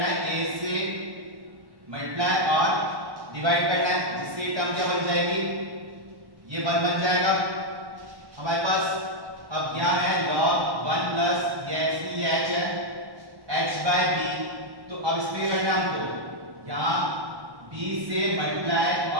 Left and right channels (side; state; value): left; late; 1.1 ms